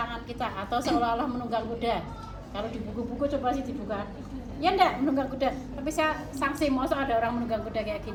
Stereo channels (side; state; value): both; identical; correlation 1.00